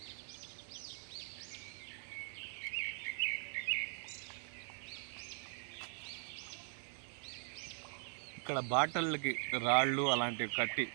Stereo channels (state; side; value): silent; left; 50 dB below the other